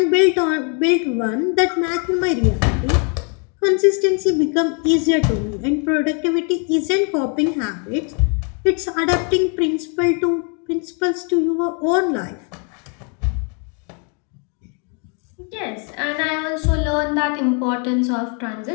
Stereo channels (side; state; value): right; quieter; 38.7 dB